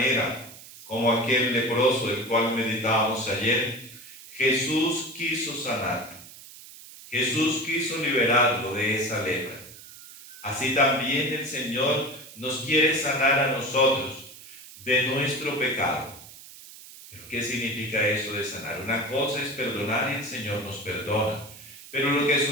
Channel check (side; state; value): right; noise; hiss, 17 dB below the sound